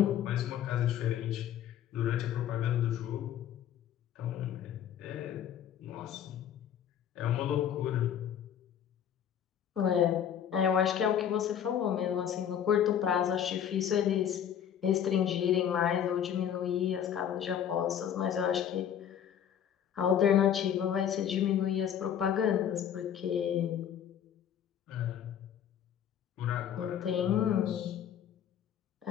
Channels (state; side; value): quieter; right; 9.4 dB